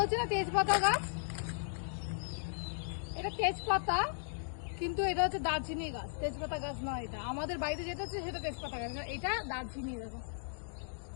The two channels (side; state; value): right; silent; digital silence